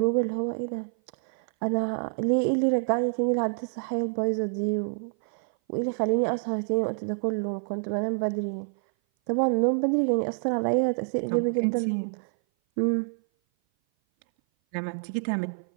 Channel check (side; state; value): left; silent; 57 dB below the other